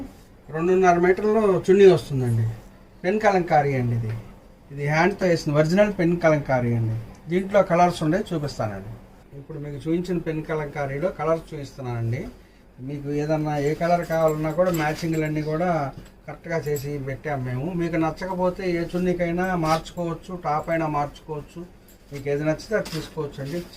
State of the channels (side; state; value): both; identical; correlation 1.00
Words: 2.5 మీటర్లు చున్నీ వస్తుందండి. పెన్ కలంకారీ అండి. ఇది హ్యాండ్తో వేసిన ఒరిజినల్ పెన్ కలంకారీ అండి. దీంట్లో కలర్స్ ఉండే చూపిస్తానండి. ఇప్పుడు మీకు చూపించిన పెన్ కలంకారీలో కలర్స్ చూపిస్తున్నానండి. మీకు ఏదన్నా ఏ కలర్ కావాలన్నా కూడా మ్యాచింగ్లన్నీ కూడా కరెక్ట్గా చేసి పెట్టాము మేము. మీకు నచ్చకపోతే ఏ చున్నీకైనా మార్చుకోవచ్చు, టాప్ అయినా మార్చుకోవచ్చు. మీకు ఏది నచ్చితే అది తీసుకోవచ్చు అండి.